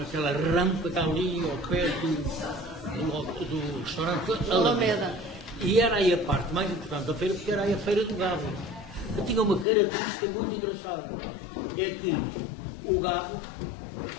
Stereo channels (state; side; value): drops out; right; at 9.7 s